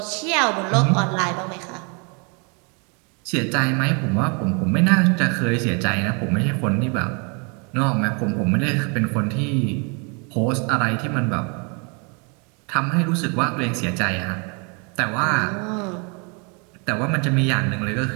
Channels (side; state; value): left; quieter; 34.2 dB